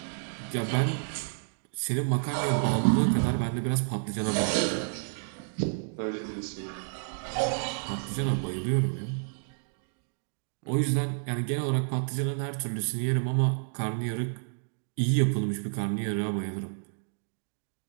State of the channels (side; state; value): left; silent; digital silence